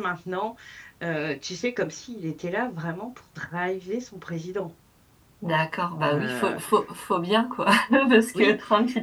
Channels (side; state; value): both; identical; correlation 1.00